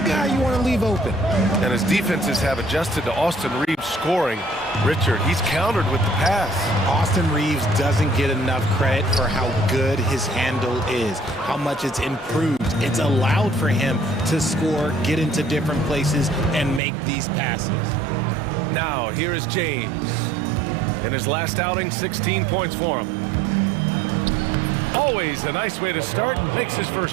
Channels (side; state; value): left; drops out; at 16.8 s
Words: you want to leave open. And his defenses have adjusted to Austin Reeves scoring. Richard, he's countered with the pass. Austin Reeves doesn't get enough credit for how good his handle is, how much it's improved. It's allowed for him to score, get into different places, and make these passes. Now, here is James. In his last outing, 16 points for him. Always a nice way to start. Makes his